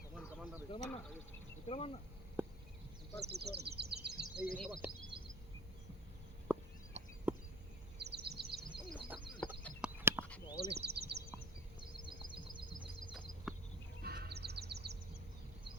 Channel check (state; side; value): normal; both; correlation 0.39